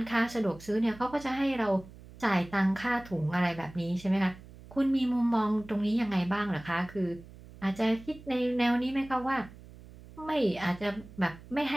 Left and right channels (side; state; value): right; noise; hum, 19 dB below the sound